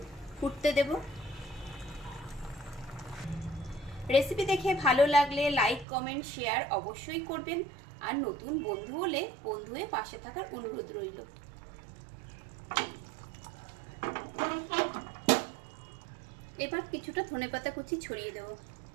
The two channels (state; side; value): drops out; left; at 5.9 s